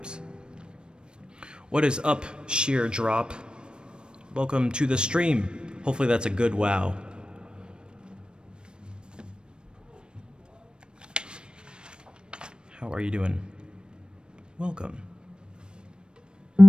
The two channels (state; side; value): late; left; 0.052 ms